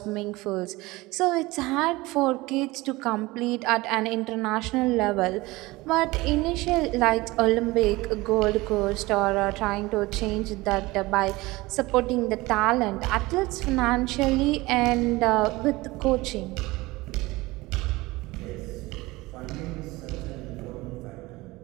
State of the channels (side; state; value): left; quieter; 20.8 dB